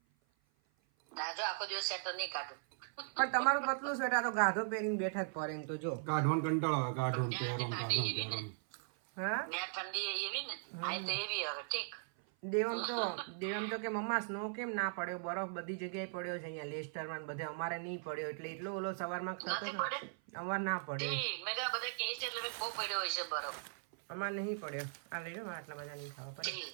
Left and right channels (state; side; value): silent; left; 52 dB below the other